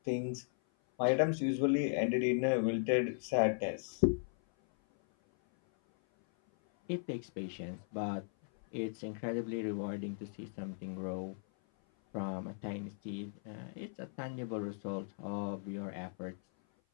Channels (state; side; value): silent; right; 53 dB below the other